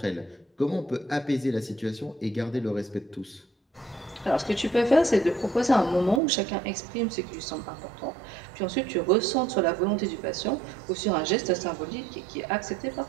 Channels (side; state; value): left; drops out; at 6.2 s